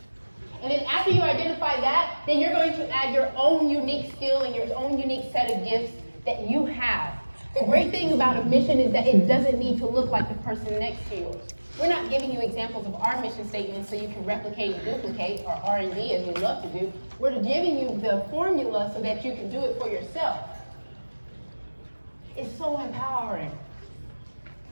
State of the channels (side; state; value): both; inverted; correlation -1.00